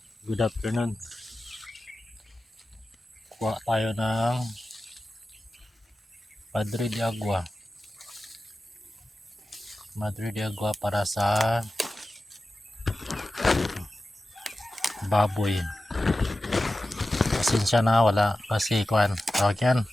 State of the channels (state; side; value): normal; both; correlation 0.94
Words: Good afternoon. Kuha tayo ng Madre de Agua. Madre de Agua para sa baboy. Pasensya na, wala kasi kuan. Tawag yan.